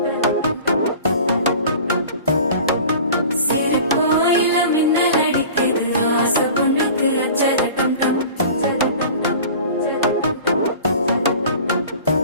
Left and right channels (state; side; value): inverted; both; correlation -0.41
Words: சிரிப்போ இல்ல மின்னல் அடிக்குது ஆசை பொண்ணுக்கு அச்சத டம் டம்